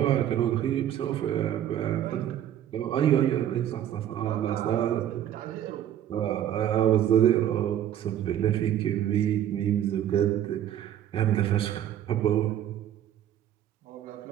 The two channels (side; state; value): left; quieter; 11.1 dB